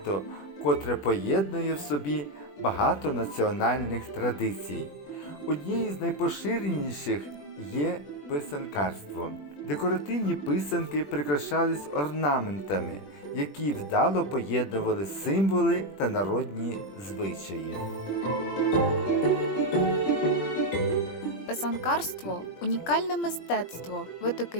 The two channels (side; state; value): right; late; 20 ms